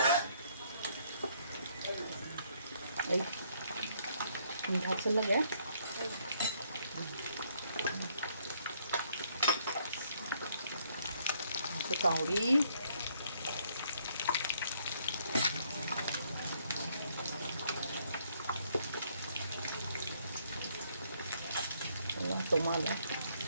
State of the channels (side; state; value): both; inverted; correlation -0.68